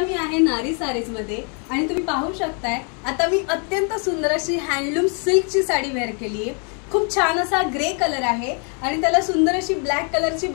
आहे नारी सारीज मध्ये आणि तुम्ही पाहू शकताय आता मी अत्यंत सुंदर अशी हँडलूम सिल्कची साडी वेअर केली आहे। खूप छान असा ग्रे कलर आहे आणि त्याला सुंदर अशी ब्लॅक कलरची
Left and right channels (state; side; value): quieter; right; 39.3 dB